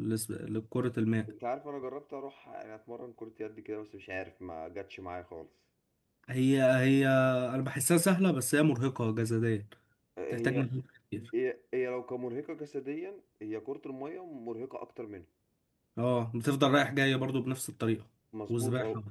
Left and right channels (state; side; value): identical; both; correlation 1.00